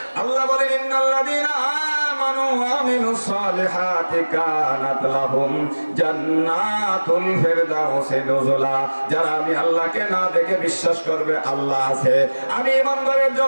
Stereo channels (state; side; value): inverted; both; correlation -1.00